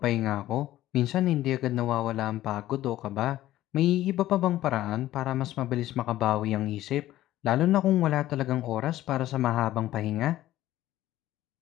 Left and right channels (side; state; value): right; quieter; 14.5 dB